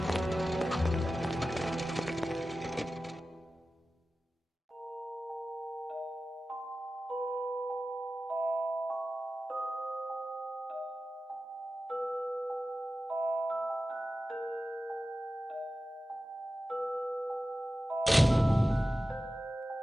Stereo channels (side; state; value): both; normal; correlation 0.94